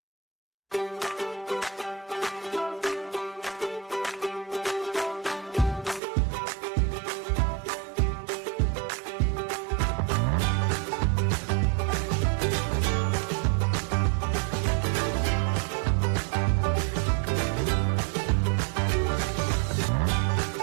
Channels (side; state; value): left; drops out; at 6.0 s